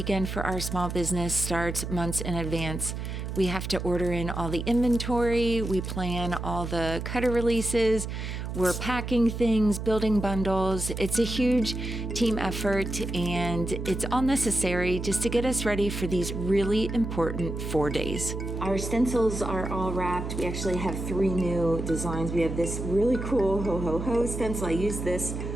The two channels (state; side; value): noise; right; hum, 5 dB below the sound